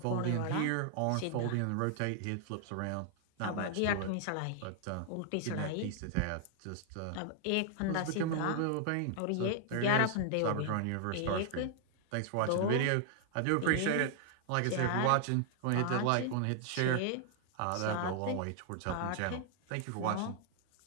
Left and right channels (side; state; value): both; different; correlation 0.00